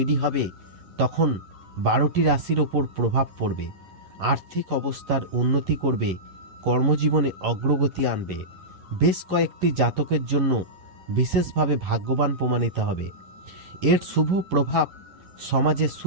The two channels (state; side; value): late; left; 11 ms